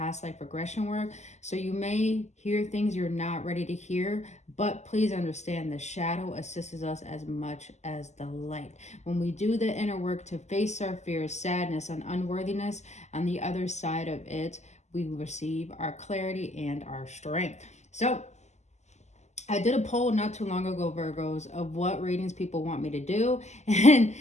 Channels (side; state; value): right; late; 0.33 ms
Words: life regression work. So you may hear things you're not ready to hear, but please understand the shadow assists us as much as the light. When we do the inner work to face our fears, sadness, and unworthiness, on the other side of it, we receive our clarity and our strength. So I did a poll not too long ago, Virgos, of what readings people want me to do, and